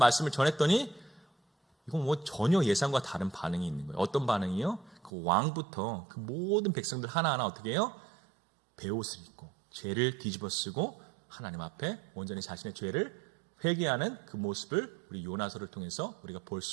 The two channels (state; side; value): drops out; left; at 5.1 s